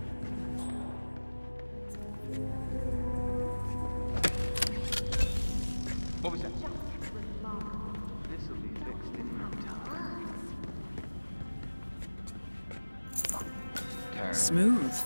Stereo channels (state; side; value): inverted; both; correlation -1.00